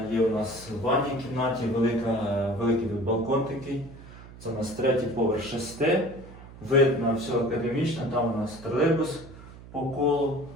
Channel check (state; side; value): noise; right; hum, 17 dB below the sound